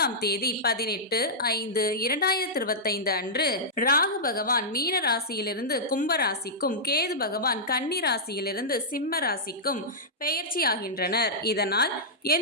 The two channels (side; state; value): both; normal; correlation -0.11